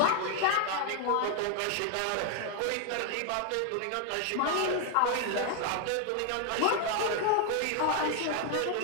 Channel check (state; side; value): different; both; correlation 0.00